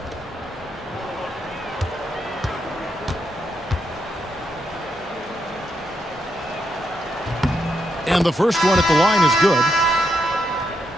And the first one at the line is good.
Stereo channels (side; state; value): both; normal; correlation 0.80